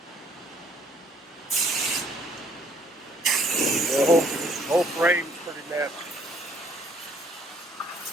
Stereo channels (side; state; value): both; normal; correlation 0.63